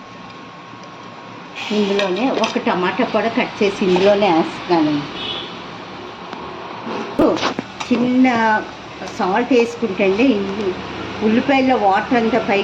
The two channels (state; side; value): identical; both; correlation 1.00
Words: ఇందులోనే ఒక టమాటా కూడా కట్ చేసి ఇందులోనే వేస్తున్నాను. చిన్న సాల్ట్ వేసుకుంటే అండి ఉల్లిపాయల్లో వాటర్ అంతా